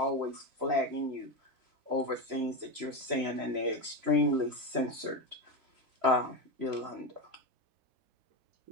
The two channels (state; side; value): late; left; 3.0 ms